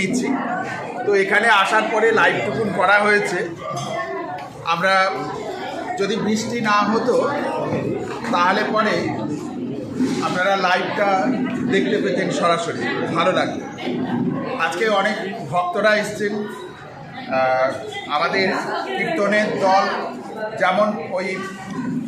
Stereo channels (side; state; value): both; identical; correlation 1.00